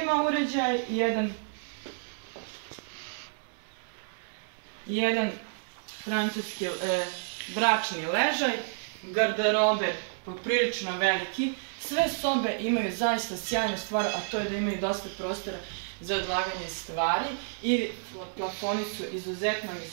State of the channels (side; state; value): left; silent; digital silence